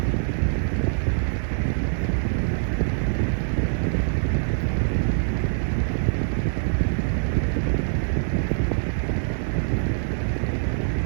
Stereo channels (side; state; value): left; silent; digital silence